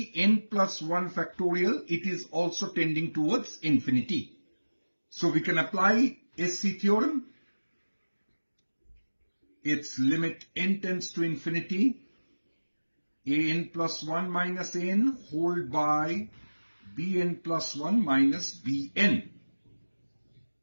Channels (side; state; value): both; inverted; correlation -1.00